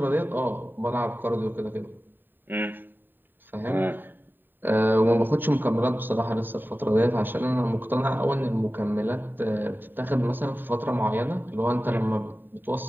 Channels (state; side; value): late; left; 0.093 ms